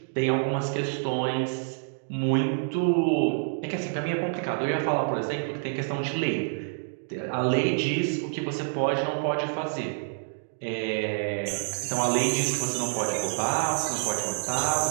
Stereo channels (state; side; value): silent; left; digital silence